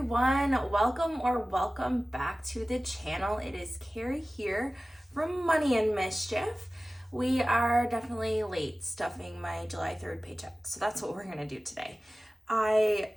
welcome back to the channel. It is Carrie here from Money and Mischief. We are definitely late stuffing my July 3rd paycheck, so that's what we're gonna do today. I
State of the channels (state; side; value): normal; both; correlation 0.97